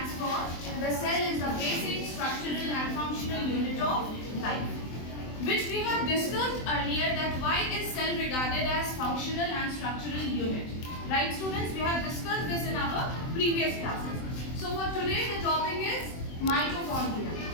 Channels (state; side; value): late; right; 23 ms